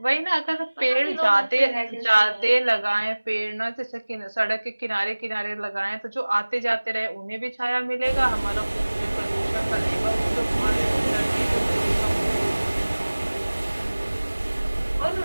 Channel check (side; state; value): both; inverted; correlation -1.00